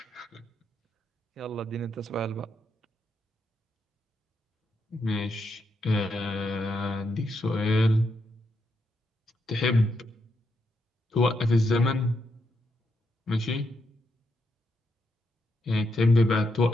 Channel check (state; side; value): normal; both; correlation 0.81